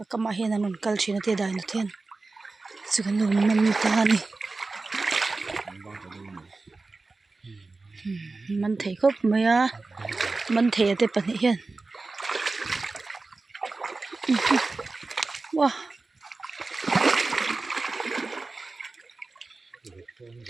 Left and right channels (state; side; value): quieter; left; 3.6 dB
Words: cái mà hiện là nón cal chỉ là thế đại nó thiên chỉ cần nón mình ta này mình thấy khóc mấy à mình thấy thế bận hiện wow